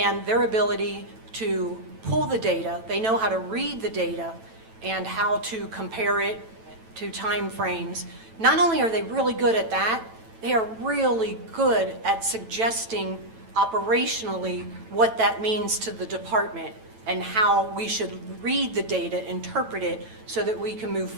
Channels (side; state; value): left; late; 9.0 ms